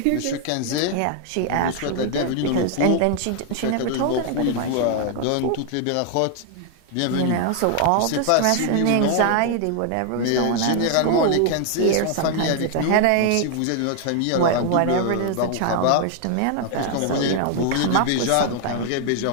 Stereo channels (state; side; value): different; both; correlation 0.00